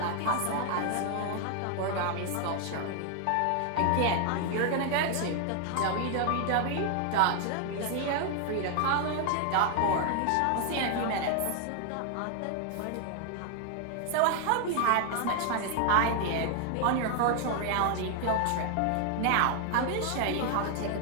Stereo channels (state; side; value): different; both; correlation 0.00